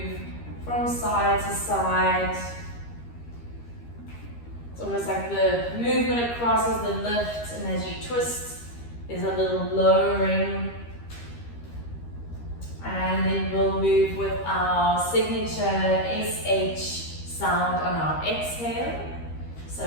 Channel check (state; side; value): late; right; 13 ms